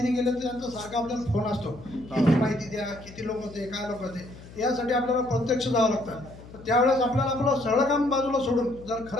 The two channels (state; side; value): noise; left; hum, 18 dB below the sound